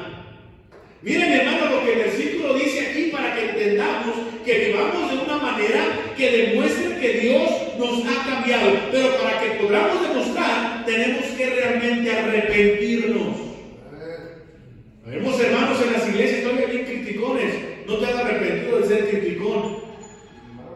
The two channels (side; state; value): both; identical; correlation 1.00